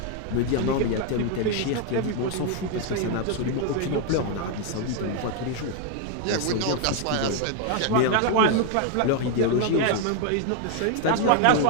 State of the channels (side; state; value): both; different; correlation 0.01